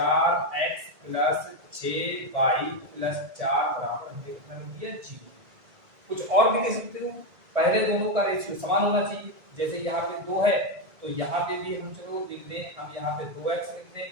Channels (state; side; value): late; left; 1.7 ms